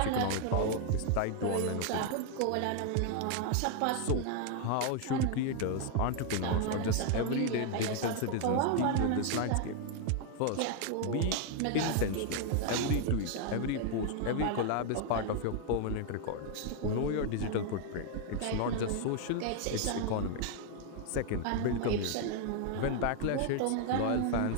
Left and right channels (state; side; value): different; both; correlation 0.00